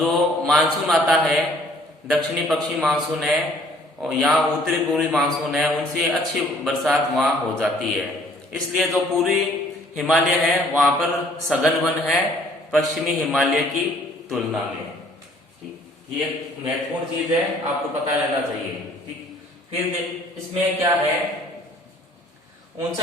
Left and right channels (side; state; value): both; normal; correlation 0.58